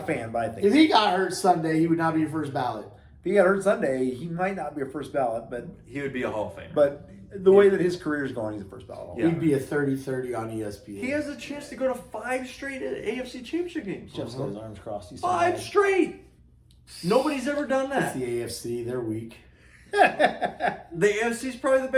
fan, but I think If he got hurt Sunday, he would not be a first ballot. if he got hurt Sunday, he might not be a first ballot, but He would be a Hall of Famer. but the way that his career is going, he's a first ballot. Yeah. He'd be a 30-30 on ESPN. He has a chance to go to 5 straight AFC Championship games. Jeff's got his arms crossed. He's 5 straight. Nobody's ever done It's that. the AFC. They're weak. The AFC is probably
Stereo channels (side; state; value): both; identical; correlation 1.00